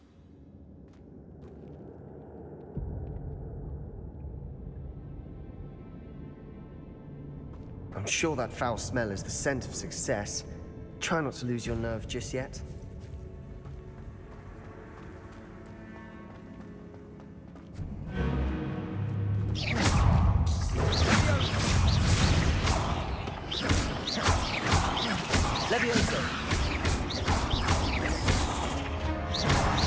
I'm sure that foul smell is the scent of success. Try not to lose your nerve just yet.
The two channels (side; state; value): both; identical; correlation 1.00